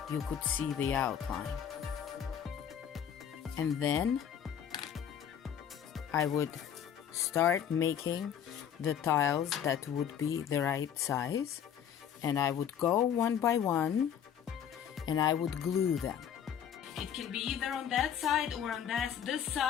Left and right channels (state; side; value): quieter; right; 8.8 dB